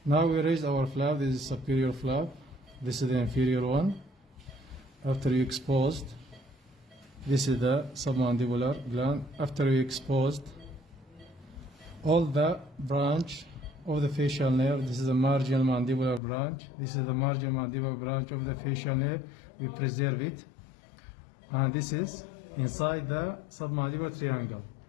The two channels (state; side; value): drops out; right; at 16.2 s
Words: Now we raise our flap. This is superior flap. This is the inferior one. After you exposed, this is the submandibular gland. After you exposed all the branch of the facial nerve, this is the marginal mandibular branch. This is the marginal mandibular branch of the facial nerve. We preserve it. And this is inside the submandibular triangle.